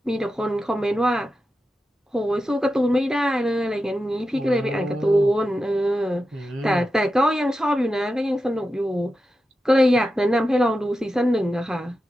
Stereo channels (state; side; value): normal; both; correlation 0.91